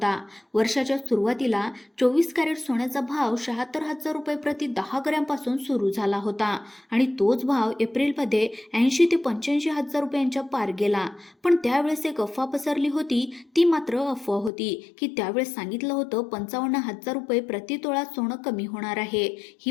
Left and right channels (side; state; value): right; drops out; at 14.5 s